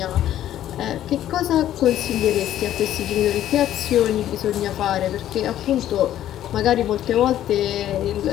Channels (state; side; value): quieter; right; 12.1 dB